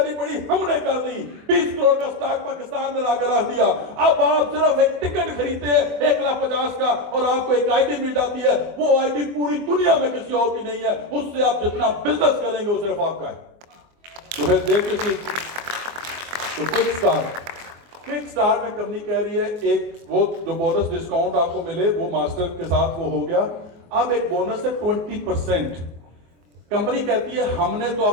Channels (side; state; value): left; late; 24 ms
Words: पड़ी, हमने कर दी। 20 करोड़ का स्टॉक पाकिस्तान में लाकर रख दिया। अब आप सिर्फ एक टिकट खरीदते हैं 1,50,000 का और आपको एक आईडी मिल जाती है। वो आईडी पूरी दुनिया में किसी और की नहीं है, उससे आप जितना बिजनेस करेंगे वो सिर्फ आपका है। तो फिर देखिए, तो क्विक स्टार्ट में कंपनी कह रही है एक वो जो बोनस डिस्काउंट आपको मिले वो मास्टर के साथ वो हो गया। अब एक बोनस है 20%। कंपनी कहती है हमने तो